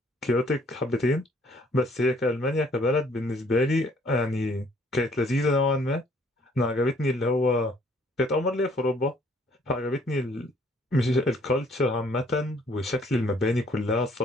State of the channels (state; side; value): normal; both; correlation 0.62